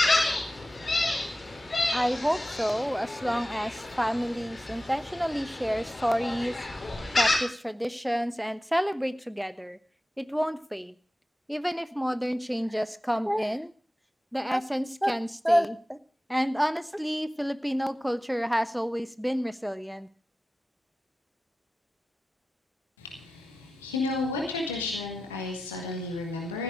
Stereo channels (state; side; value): normal; both; correlation 0.94